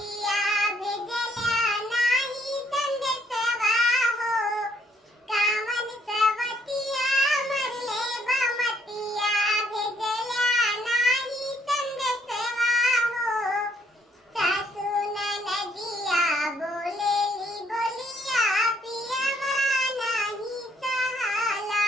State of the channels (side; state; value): both; normal; correlation 0.68